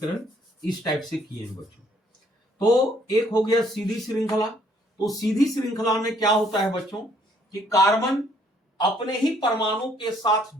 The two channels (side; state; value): both; normal; correlation 0.65